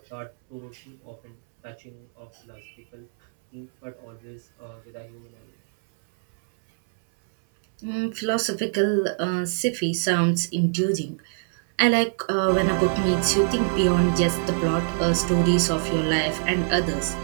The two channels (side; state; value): left; silent; 62 dB below the other